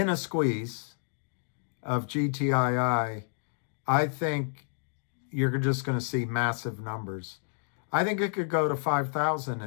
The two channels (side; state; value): right; silent; digital silence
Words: squeeze of GTII, I think you're just going to see massive numbers. I think it could go to 5,000